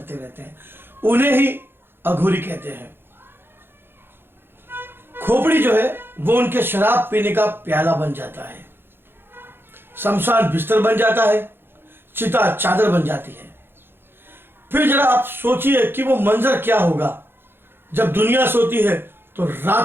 रहते हैं। उन्हें ही अघोरी कहते हैं। खोपड़ी जो है वो उनके शराब पीने का प्याला बन जाता है, शमशान बिस्तर बन जाता है, चिता चादर बन जाती है। फिर जरा आप सोचिए कि वो मंजर क्या होगा जब दुनिया सोती है तो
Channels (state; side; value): late; left; 0.10 ms